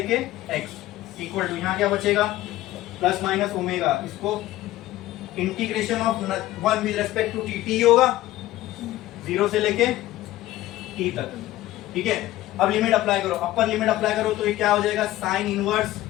x इक्वल टू, यहाँ क्या बचेगा, प्लस माइनस ओमेगा, इसको integration of 1 with respect to t होगा 0 से लेके t तक, ठीक है। अब लिमिट अप्लाई करो, अपर लिमिट अप्लाई करो तो ये क्या हो जाएगा, sine inverse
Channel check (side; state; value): right; quieter; 15.7 dB